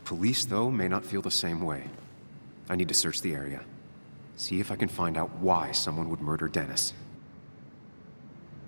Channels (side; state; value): both; inverted; correlation -1.00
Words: though, may not feel the same way. I need to search the area. See if I can find out why someone would murder Dennis.